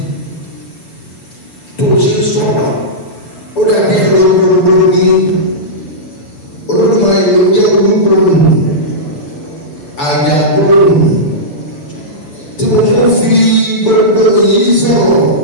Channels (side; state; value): right; late; 6.9 ms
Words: tó ṣe sọ̀rọ̀ ó dàbí ẹ̀rọ gbogbo ní Olódùmarè ló jẹ́ olúgbòrò àjàgbòrò tí mo tún fi gbogbo yìí sọ̀rọ̀